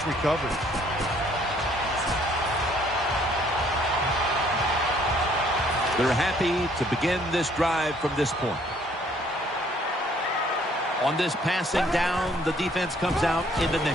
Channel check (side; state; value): both; normal; correlation 0.62